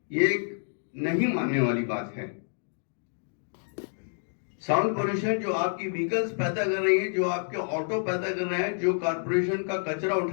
ये एक नहीं मानने वाली बात है। साउंड पोल्यूशन जो आपकी व्हीकल्स पैदा कर रही है, जो आपके ऑटो पैदा कर रहे हैं, जो कारपोरेशन का कचरा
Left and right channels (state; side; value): silent; right; digital silence